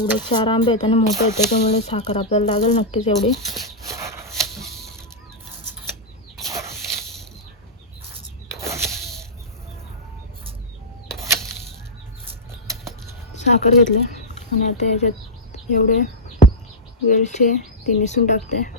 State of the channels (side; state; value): both; normal; correlation -0.08